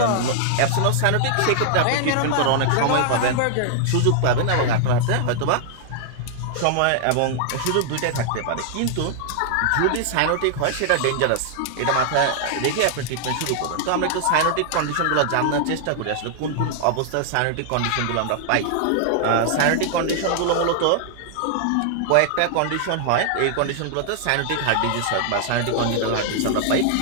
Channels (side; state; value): both; different; correlation -0.01